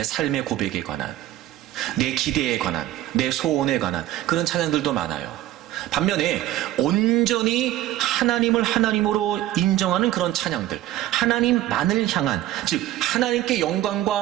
삶의 고백에 관한, 내 기대에 관한, 내 소원에 관한 그런 찬양들도 많아요. 반면에 온전히 하나님을 하나님으로 인정하는 그런 찬양들, 하나님만을 향한, 즉 하나님께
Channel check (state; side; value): quieter; left; 14.2 dB